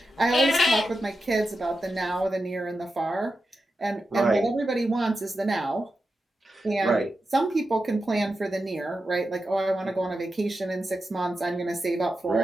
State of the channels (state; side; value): normal; both; correlation 0.90